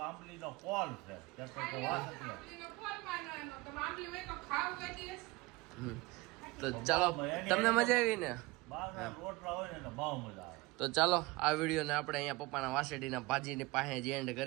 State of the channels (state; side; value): quieter; left; 22.3 dB